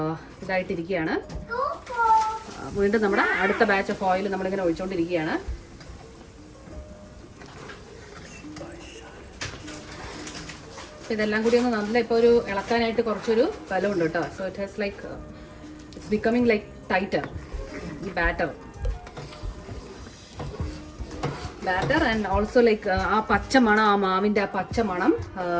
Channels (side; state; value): both; identical; correlation 1.00